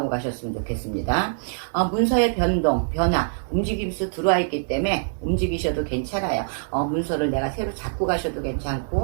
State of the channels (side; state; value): left; silent; 61 dB below the other